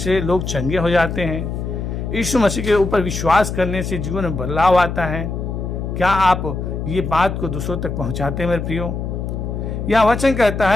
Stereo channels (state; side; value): noise; left; hum, 4 dB below the sound